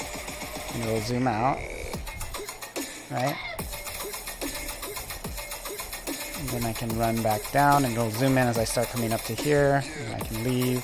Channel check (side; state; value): both; identical; correlation 1.00